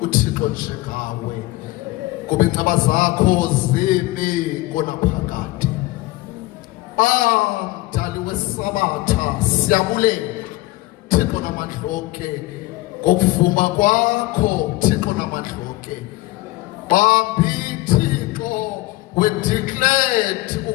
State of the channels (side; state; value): right; quieter; 19.2 dB